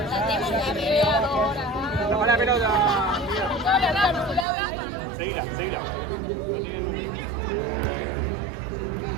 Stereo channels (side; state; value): left; drops out; at 4.5 s